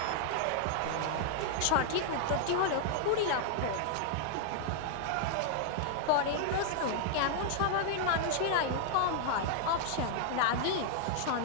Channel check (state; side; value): different; both; correlation 0.00